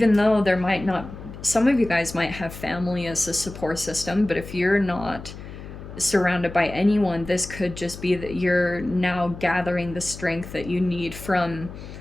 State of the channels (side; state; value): left; noise; hum, 13 dB below the sound